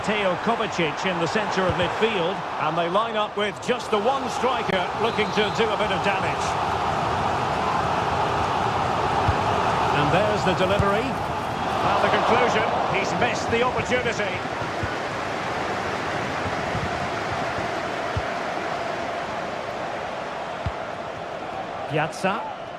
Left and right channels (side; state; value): both; identical; correlation 1.00